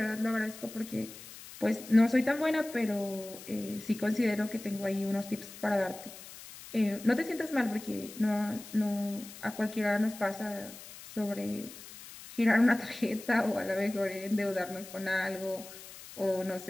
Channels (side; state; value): left; noise; hiss, 15 dB below the sound